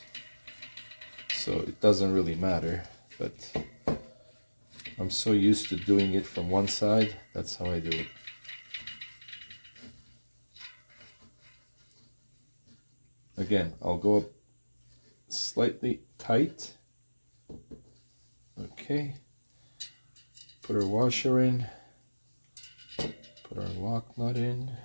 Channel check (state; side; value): inverted; both; correlation -1.00